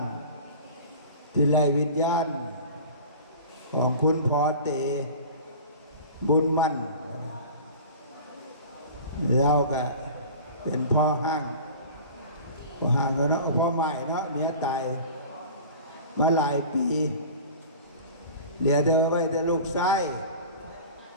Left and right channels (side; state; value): both; inverted; correlation -0.38